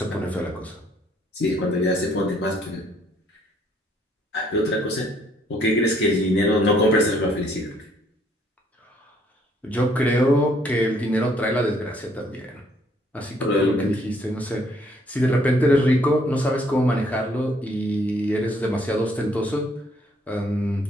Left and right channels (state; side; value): normal; both; correlation 0.65